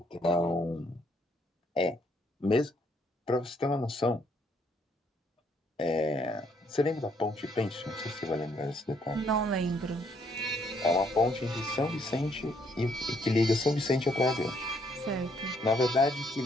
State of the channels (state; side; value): normal; both; correlation 0.69